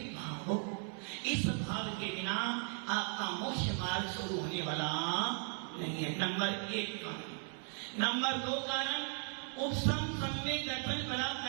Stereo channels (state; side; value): silent; left; 53 dB below the other